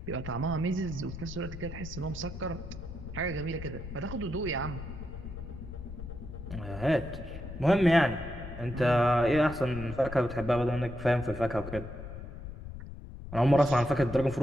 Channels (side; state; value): left; noise; rumble, 10 dB below the sound